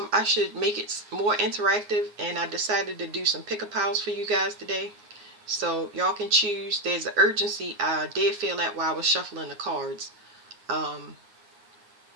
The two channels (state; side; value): late; left; 9.6 ms